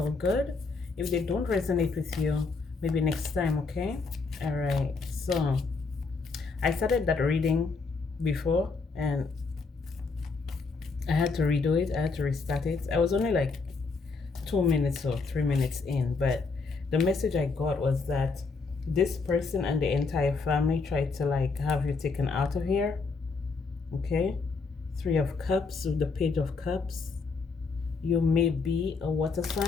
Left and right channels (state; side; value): quieter; right; 4.3 dB